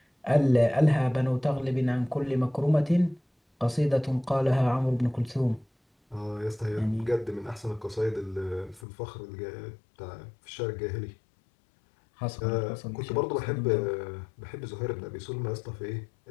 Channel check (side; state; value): right; drops out; at 8.8 s